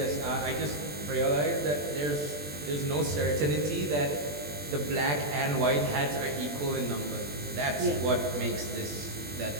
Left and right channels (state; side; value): late; left; 20 ms